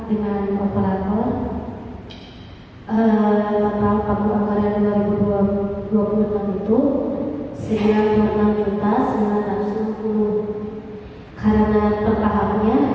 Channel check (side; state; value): both; identical; correlation 1.00